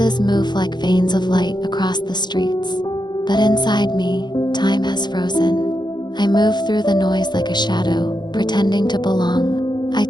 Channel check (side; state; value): right; late; 0.21 ms